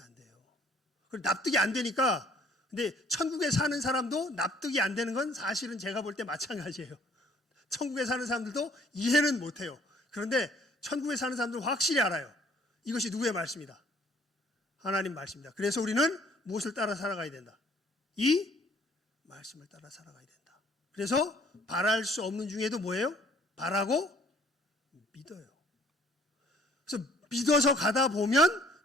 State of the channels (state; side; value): normal; both; correlation 0.59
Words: 돼요. 그리고 납득이 안 되니까, 근데 천국에 사는 사람도 납득이 안 되는 건 사실은 제가 볼 때 마찬가지예요. 천국에 사는 사람들도 이해는 못해요. 그런데 천국에 사는 사람들은 확실히 알아요. 이것이 누구의 말씀이다? 하나님 말씀입니다. 그래서 우리는 무엇을 따라 살아가야 된다? 이 말씀을 따라 살아가야 된다. 그래서 바랄 수 없는 중에도 뭐예요? 바라고 믿어요. 그래서 믿어서 가다 보면